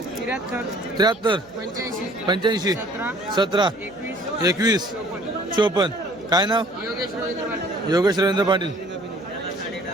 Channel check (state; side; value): noise; right; hum, 27 dB below the sound